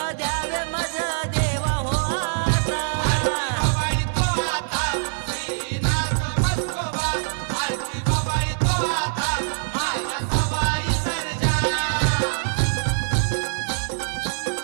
द्यावे मज देवा हो आता. बाबाई तो आता, श्रीनाथ मस्कोबा. आरती बाबाई तो आता, माझ्या सवाई सर्जा.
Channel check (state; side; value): silent; left; 60 dB below the other